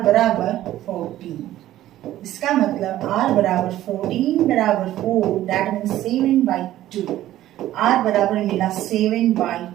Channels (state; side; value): quieter; left; 13.8 dB